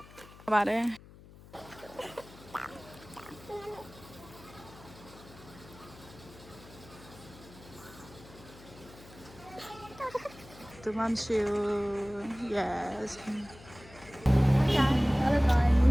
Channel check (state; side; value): noise; left; hum, 20 dB below the sound